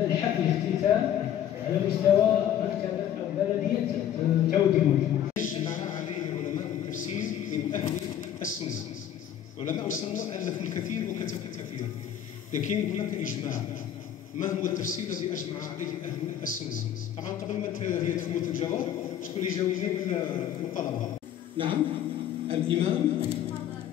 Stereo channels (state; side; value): quieter; right; 10.3 dB